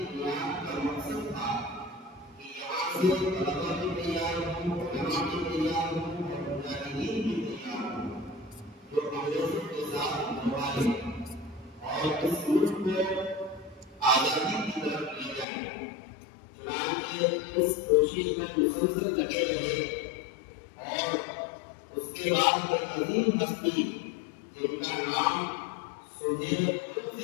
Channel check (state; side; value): drops out; right; at 15.5 s